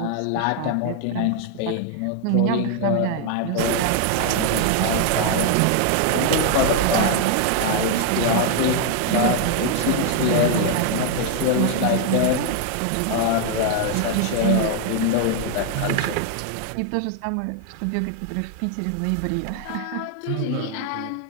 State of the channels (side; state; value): both; different; correlation 0.00